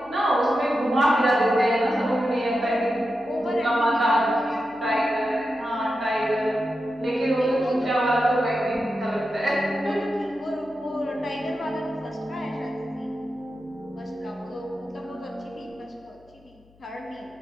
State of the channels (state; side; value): noise; left; hum, 29 dB below the sound